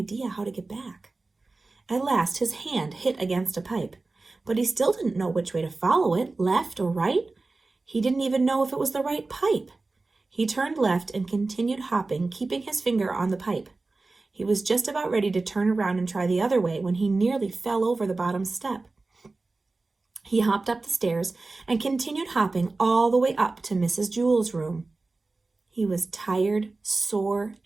how to get back. At last, his hand hit against a pipe, but he still didn't know which way to follow it, left or right. He didn't even know if it was the right pipe. He turned left and continued hopping, keeping his finger on the pipe. He was just about ready to turn around and try the other way when he nearly fell over the bottom step. He hopped up the stairs and continued hopping all the way up to Mrs. Jewell's room. He was tired, sore,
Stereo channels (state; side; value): quieter; left; 3.5 dB